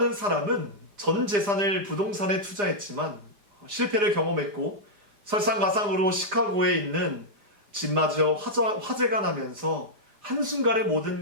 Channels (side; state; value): left; late; 4.9 ms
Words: 사람은 전 재산을 부동산에 투자했지만 실패를 경험했고 설상가상으로 시카고에 있는 집마저 화재가 나면서 한순간에